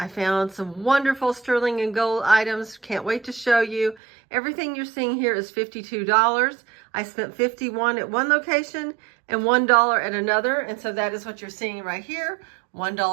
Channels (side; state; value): left; drops out; at 4.0 s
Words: found some wonderful sterling and gold items. Can't wait to show you. Everything you're seeing here is $52. I spent $51 at one location and $1 at another. And so that is what you're seeing right here.